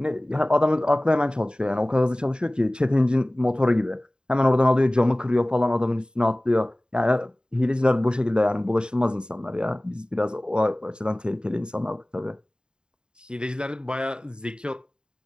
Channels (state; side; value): late; left; 0.049 ms